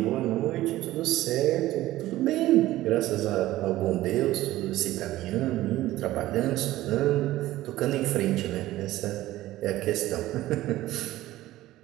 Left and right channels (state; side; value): quieter; left; 15.8 dB